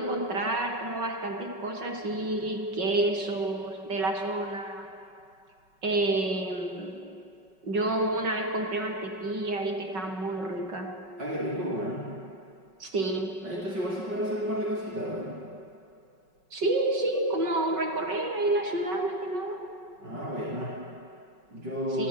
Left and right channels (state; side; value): late; left; 5.3 ms